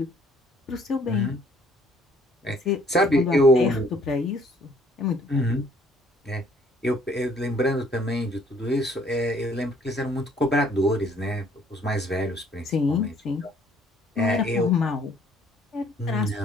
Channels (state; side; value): normal; both; correlation 0.61